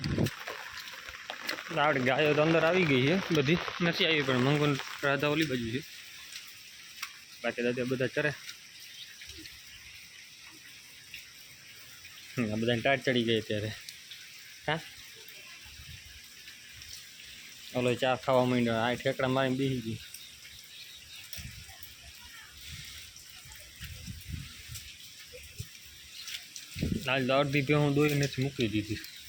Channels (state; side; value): identical; both; correlation 1.00